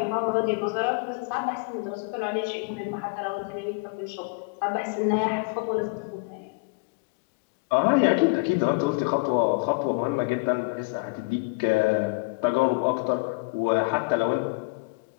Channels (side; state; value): right; quieter; 28.7 dB